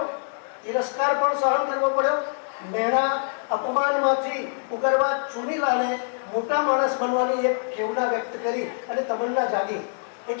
તિરસ્કાર પણ સહન કરવો પડ્યો, મેણા અપમાનમાંથી ઉગરવા ચુનીલાલે મોટા માણસ બનવાની એક ખેવના વ્યક્ત કરી અને તમન્ના જાગી.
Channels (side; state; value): right; silent; digital silence